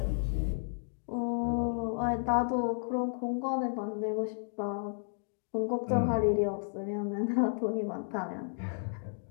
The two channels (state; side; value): silent; right; digital silence